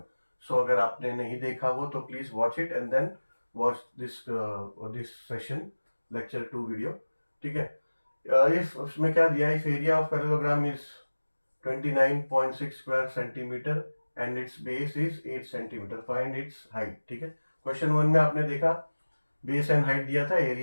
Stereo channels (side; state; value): both; inverted; correlation -1.00